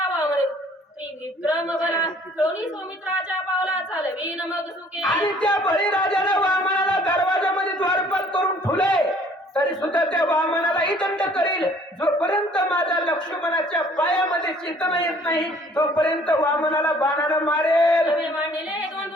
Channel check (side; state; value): both; normal; correlation 0.57